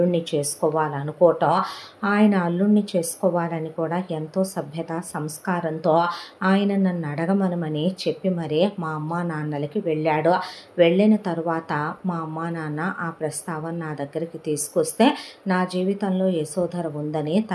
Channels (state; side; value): identical; both; correlation 1.00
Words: చేసుకోవాలనుకోవటం, ఆయన అల్లుణ్ణి చేసుకోవాలని కూడా ఎంతో సభ్యత సంస్కారంతో ఆయన నన్ను అడగమనమని చెప్పి మరీ మా అమ్మా నాన్నలకి వెళ్ళాడు. వెళ్ళిన తరువాత మా అమ్మా నాన్న ఆ ప్రస్తావన నా దగ్గరికి తీసుకొస్తే, నా జీవితంలో యశోధర ఉందని,